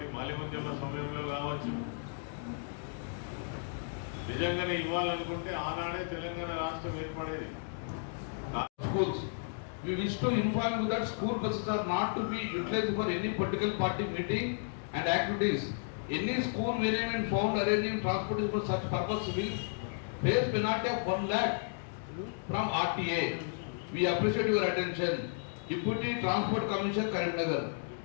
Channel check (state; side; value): silent; right; digital silence